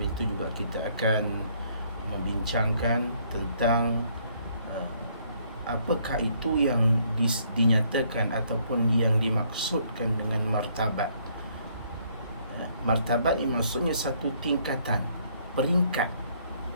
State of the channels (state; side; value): inverted; both; correlation -0.66